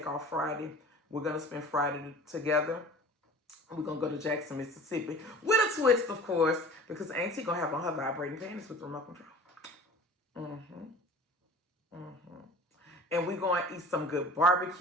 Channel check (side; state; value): both; normal; correlation 0.43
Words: off Friday. We're going to spend Friday together. We're going to go to Jackson, Mississippi with a twist, of course, because Auntie going to have on her vibrating panties with remote control. And we're going to eat some good